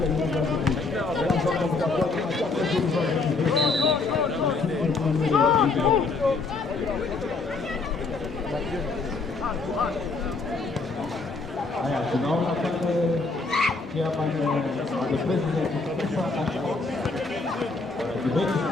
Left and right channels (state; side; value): quieter; right; 3.9 dB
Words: Haya, tunaona pale chairman the president kutoka debate